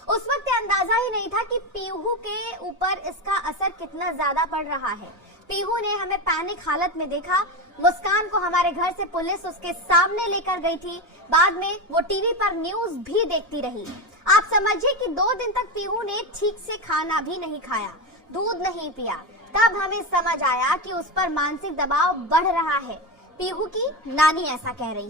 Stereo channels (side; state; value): both; normal; correlation 0.17